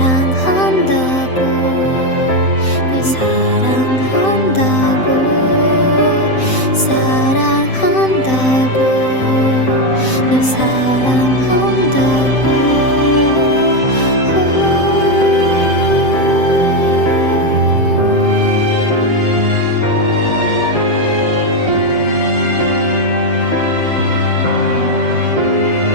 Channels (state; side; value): late; right; 7.8 ms